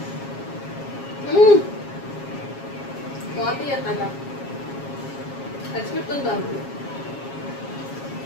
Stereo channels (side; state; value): right; late; 7.3 ms